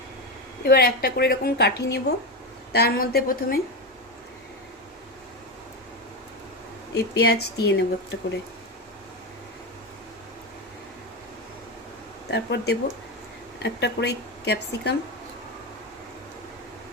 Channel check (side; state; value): both; normal; correlation 0.15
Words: এবার একটা করে এরকম কাঠি নেব, তার মধ্যে প্রথমে এই পেঁয়াজ দিয়ে নেব একটা করে, তারপর দেব একটা করে ক্যাপসিকাম,